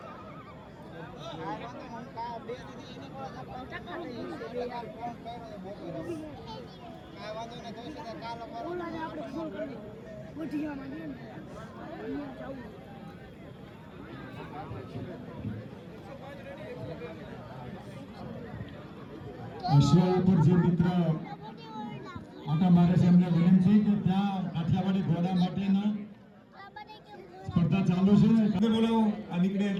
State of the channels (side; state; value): both; identical; correlation 1.00